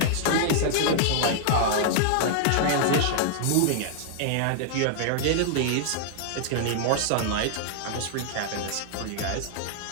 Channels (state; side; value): different; both; correlation -0.01